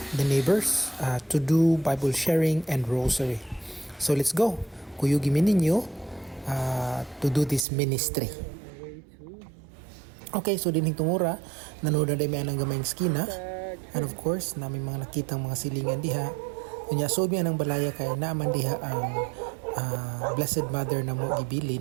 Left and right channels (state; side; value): drops out; left; at 7.7 s